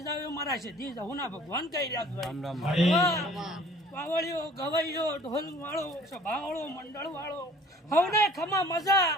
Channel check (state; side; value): normal; both; correlation 0.51